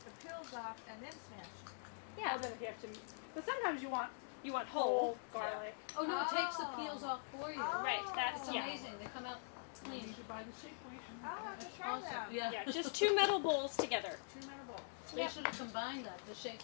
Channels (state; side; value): silent; right; digital silence